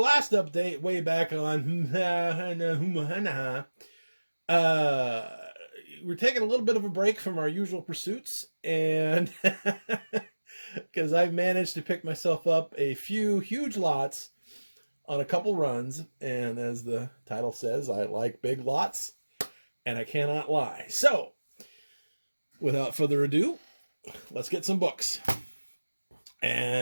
update way back on we're taking a little bit of a break from our usual pursuits, and because I've managed to pick myself up a few huge lots on a couple runs, and as the title says, I like big lots, and I cannot lie. So, without further ado, let's get some books.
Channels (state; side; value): inverted; both; correlation -1.00